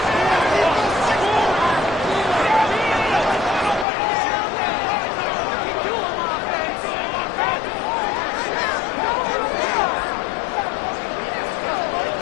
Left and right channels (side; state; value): right; drops out; at 3.9 s